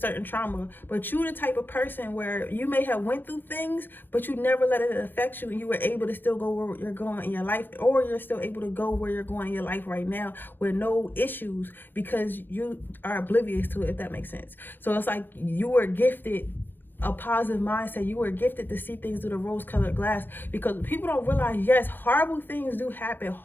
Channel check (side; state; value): right; late; 0.094 ms